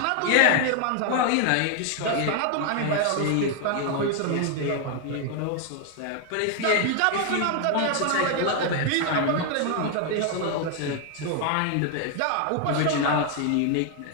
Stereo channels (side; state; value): both; different; correlation 0.00